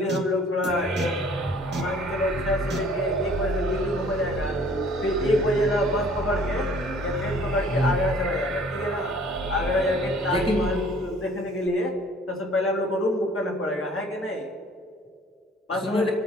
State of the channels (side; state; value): both; normal; correlation 0.54